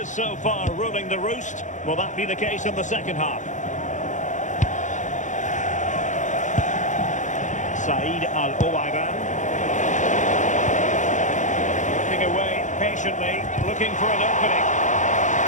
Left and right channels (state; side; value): late; right; 0.36 ms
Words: so far ruling the roost. Will that be the case in the second half? Said Al-Owairan. Working away patiently, looking for an opening.